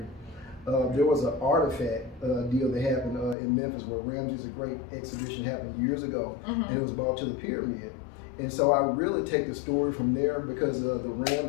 There was an artifact deal that happened in Memphis where Ramses the Great exhibition happened years ago, and it was brought to the pyramid. And so I really take the story from there, because the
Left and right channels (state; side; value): drops out; right; at 3.4 s